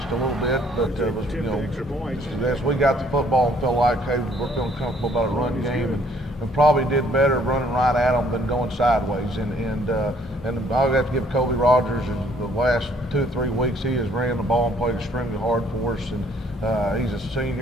a little bit. But it was, you know, as we got the football and felt like, hey, we're feeling comfortable about a run game, and probably did better running right at them than going sideways. And I'll have to give Kobe Rogers in the last 2 or 3 weeks, he has ran the ball and played extremely hard for us. And he's a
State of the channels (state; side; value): normal; both; correlation 0.62